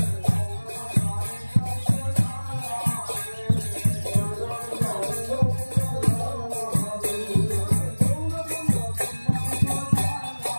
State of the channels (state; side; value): inverted; both; correlation -1.00